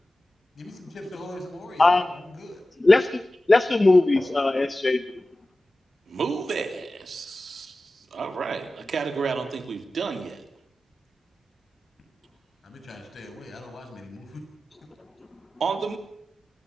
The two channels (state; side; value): normal; both; correlation 0.95